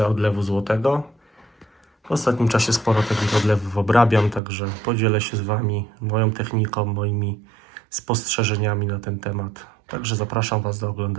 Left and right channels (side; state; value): left; drops out; at 4.4 s